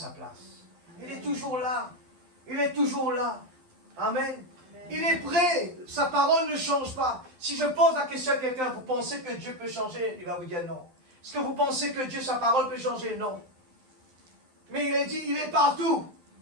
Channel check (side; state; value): left; late; 12 ms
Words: place. Il est toujours là. Il est toujours là. Amen. Il est prêt. Sa parole ne change pas. Si je pose la question à quelqu'un, vous pensez que Dieu peut changer? Il va vous dire non. Est-ce que vous pensez que Dieu, sa parole peut changer? Non. Mais il a dit, il est partout.